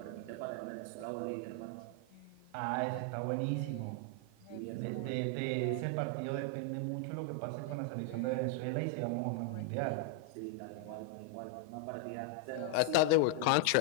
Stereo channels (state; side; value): different; both; correlation 0.00